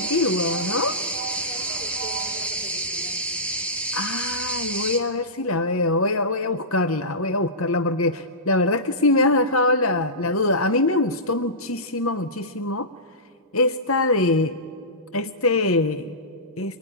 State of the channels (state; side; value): normal; both; correlation -0.19